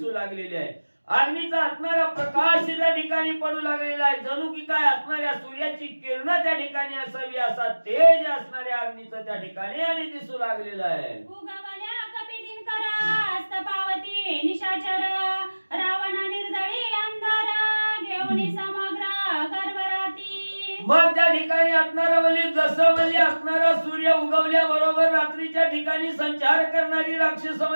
लागलेली आहे. अग्नीचा असणारा प्रकाश त्या ठिकाणी पडू लागलेला आहे. जणू की काय असणाऱ्या सूर्याची किरण त्या ठिकाणी असावी असा तेज असणाऱ्या अग्नीचं त्या ठिकाणी आणि दिसू लागलेलं आहे. उगवल्या कपी दिनकर हस्त पावती निशाचर रावण निर्दळी अंधार घेऊन समग्र गर्भराती. मग त्या ठिकाणी असणारा म्हणजे जसं म्हणजे असणारा सूर्य उगवल्या बरोबर रात्रीच्या ठिकाणी संचार करणारी राक्षस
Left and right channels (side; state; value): both; inverted; correlation -1.00